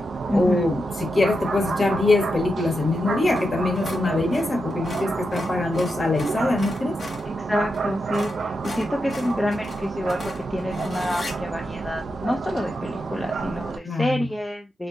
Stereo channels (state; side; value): normal; both; correlation 0.87